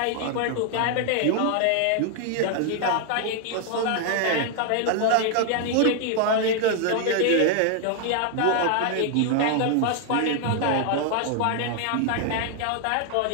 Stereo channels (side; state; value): both; different; correlation 0.00